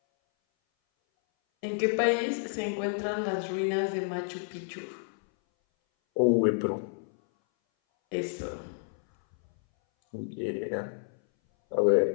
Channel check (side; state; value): right; silent; 58 dB below the other